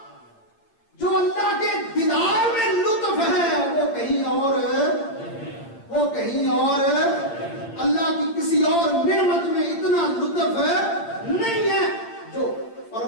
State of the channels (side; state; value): right; late; 8.8 ms